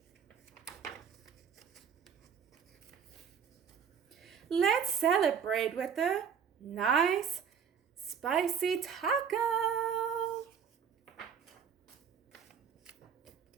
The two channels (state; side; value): quieter; left; 7.3 dB